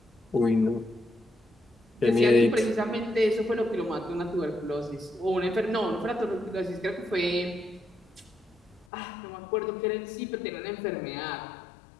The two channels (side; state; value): right; drops out; at 8.8 s